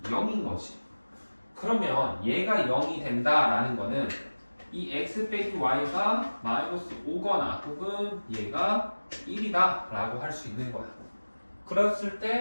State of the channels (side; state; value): both; inverted; correlation -1.00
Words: 0인 거지. 그러면 얘가 0이 된다라는 거는 이 x 빼기 y가 마이너스 5거나 혹은 얘가 1이다 라고 할 수 있는 거야. 그랬을